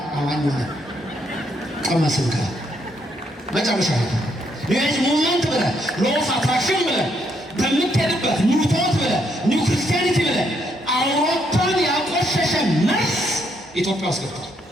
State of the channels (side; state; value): both; normal; correlation 0.74